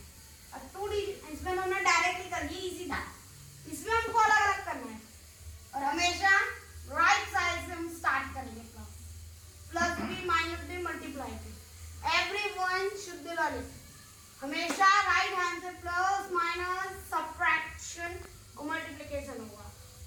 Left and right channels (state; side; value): identical; both; correlation 1.00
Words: अब 2 डिजिट इसमें हमने डायरेक्टली कर ली, इजी था। इसमें हमको अलग अलग करना है और हमेशा राइट साइड से हम स्टार्ट करेंगे। Plus B minus B multiply B, everyone should learn it. हमेशा राइट हैंड से प्लस माइनस सब्ट्रैक्शन और मल्टीप्लिकेशन होगा